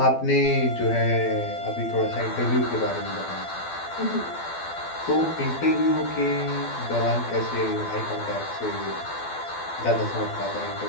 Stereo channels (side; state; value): right; late; 12 ms